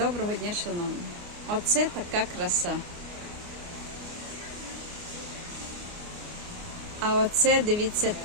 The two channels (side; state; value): left; late; 29 ms